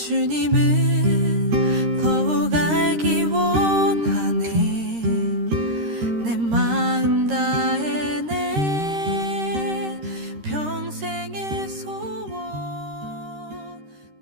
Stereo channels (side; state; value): left; late; 13 ms